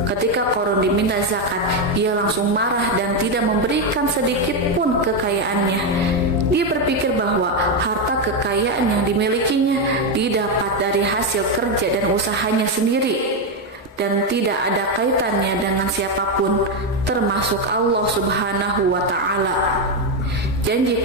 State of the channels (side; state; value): both; normal; correlation 0.07